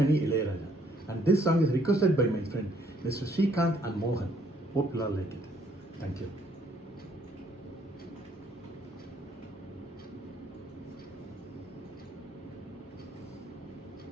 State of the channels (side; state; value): both; normal; correlation 0.66